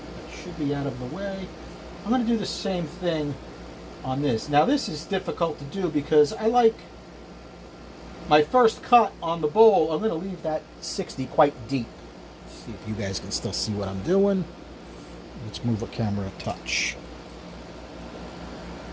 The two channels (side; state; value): both; identical; correlation 1.00